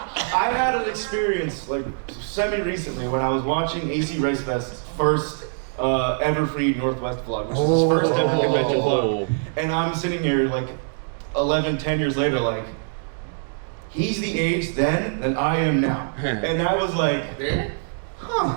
I had an experience like semi-recently when I was watching AC Rice Fest's first ever free Northwest vlog, which is his first ever convention vlog, and I'm sitting here like 11, 10 years later, like. He's the age then that I am now. And I was like,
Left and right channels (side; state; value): left; silent; digital silence